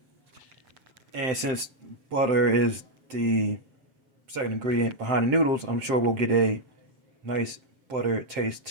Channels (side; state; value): left; late; 7.7 ms